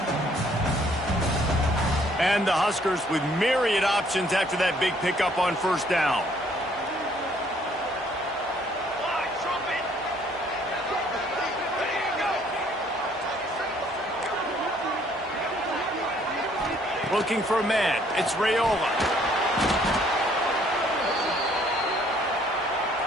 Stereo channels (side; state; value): both; normal; correlation 0.63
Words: And the Huskers with myriad options after that big pickup on first down. Looking for a man. It's Raiola.